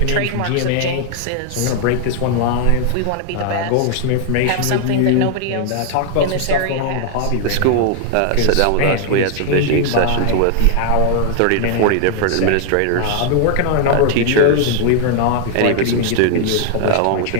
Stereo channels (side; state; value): both; different; correlation 0.00